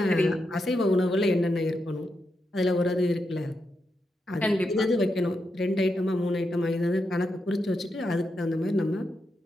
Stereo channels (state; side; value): normal; both; correlation 0.85